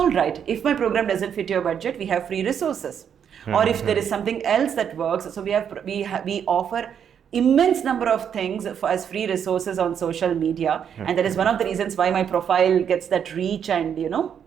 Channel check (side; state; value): left; quieter; 8.2 dB